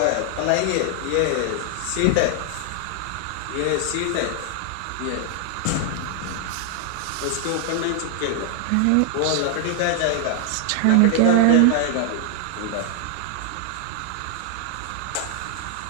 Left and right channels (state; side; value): different; both; correlation 0.00